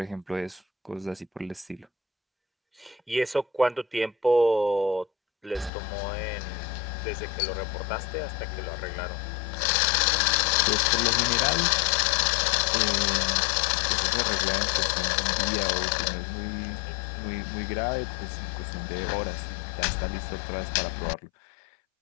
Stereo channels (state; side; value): drops out; right; at 5.7 s